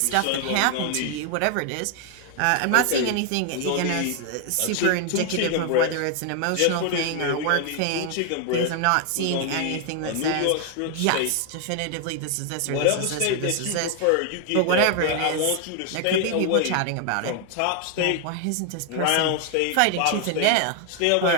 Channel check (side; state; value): both; different; correlation 0.00